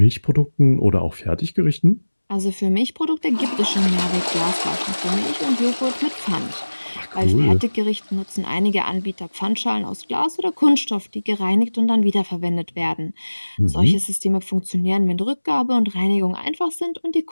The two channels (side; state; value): both; inverted; correlation -1.00